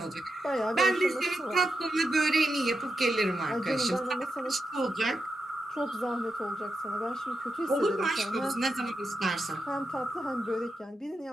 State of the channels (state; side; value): normal; both; correlation 0.87